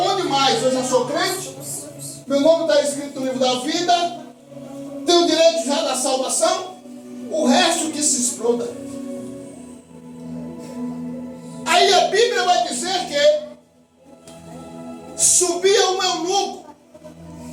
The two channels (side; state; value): both; identical; correlation 1.00